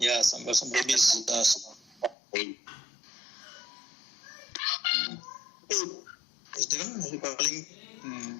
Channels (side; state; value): right; drops out; at 2.1 s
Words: some babies. Is there calling?